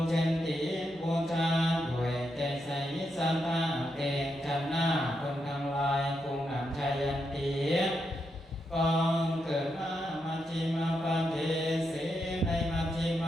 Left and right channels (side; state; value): both; normal; correlation 0.83